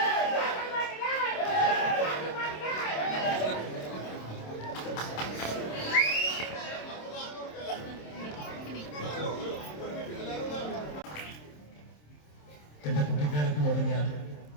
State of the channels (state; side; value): late; right; 27 ms